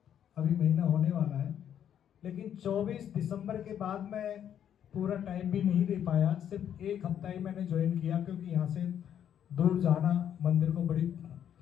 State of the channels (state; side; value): quieter; right; 9.6 dB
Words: अभी महीना होने वाला है, लेकिन 24 दिसंबर के बाद मैं पूरा टाइम भी नहीं दे पाया, सिर्फ एक हफ्ता ही मैंने ज्वाइन किया, क्योंकि यहाँ से दूर जाना मंदिर को बड़ी,